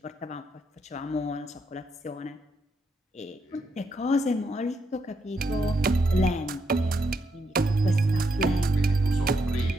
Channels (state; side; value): normal; both; correlation 0.79